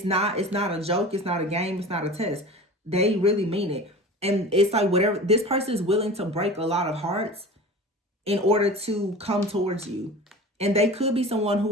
not a joke. It's not a game. It's not a test. They really mean it. And it's like whatever, this person is willing to break a lot of hearts in order to come towards you. And they could be someone who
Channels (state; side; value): normal; both; correlation 0.36